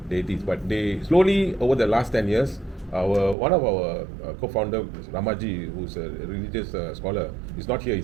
deities. But they slowly over the last 10 years, one of our co-founder Ramaji, who's a religious scholar, is not here.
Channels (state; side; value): drops out; left; at 3.4 s